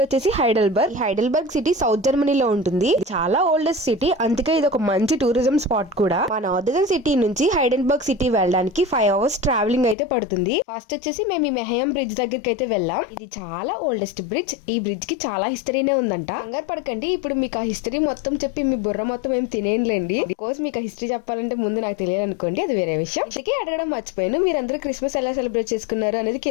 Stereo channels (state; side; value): drops out; right; at 10.0 s